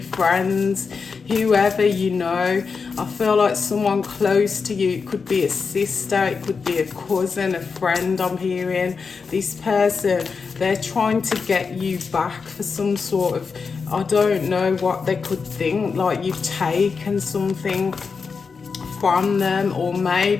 whoever you know. I feel like someone close to you. It could be a sister, it could be a cousin, a friend. I'm hearing this person, they're trying to get you back for some sort of, I don't know what they could think, like you've taken something from them, or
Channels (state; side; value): quieter; right; 5.2 dB